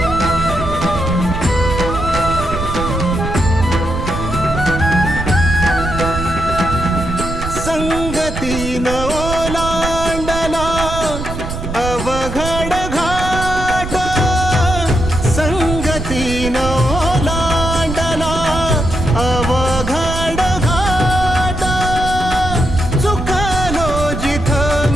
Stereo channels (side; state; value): right; noise; rumble, 6 dB below the sound